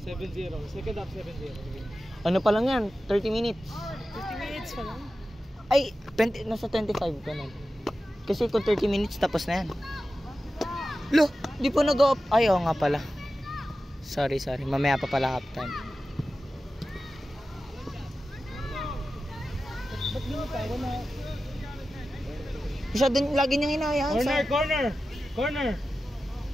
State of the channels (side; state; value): both; normal; correlation 0.93